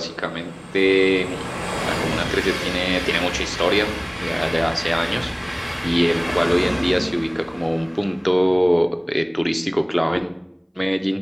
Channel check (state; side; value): identical; both; correlation 1.00